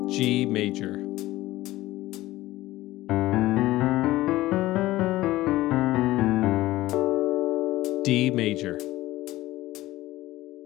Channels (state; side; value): quieter; right; 17.0 dB